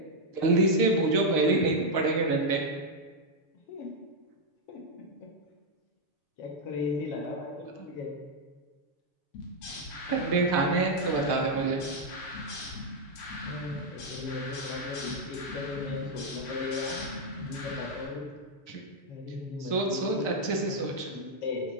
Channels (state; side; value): late; right; 6.6 ms